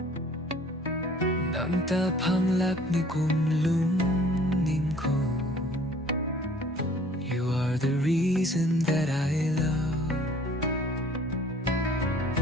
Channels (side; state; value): both; normal; correlation 0.54